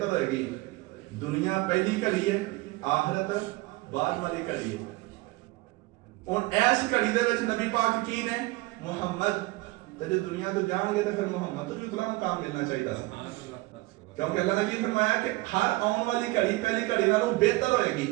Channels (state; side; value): quieter; left; 21.3 dB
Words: ہوئے گی دنیا پہلی گھڑی ہے آخرت بعد والی گھڑی ہے اور ایس گھڑی دے وچ نبی پاک کی نے محمد تے جے دنیا تو جان گے تے پھر محمد تو اتنا مقام ملنا چاہیے تھا کیونکہ اللہ نے کی فرمایا کہ ہر آن والی گھڑی پہلی گھڑی نالوں بہتر ہوئے گی